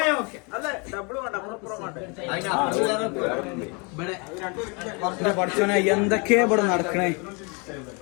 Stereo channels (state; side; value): quieter; right; 31.9 dB